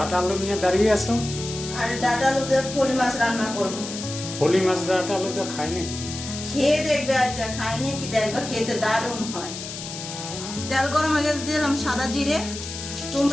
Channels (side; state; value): left; noise; hiss, 9 dB below the sound